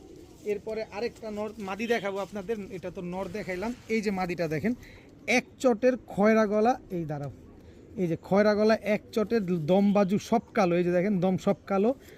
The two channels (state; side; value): identical; both; correlation 1.00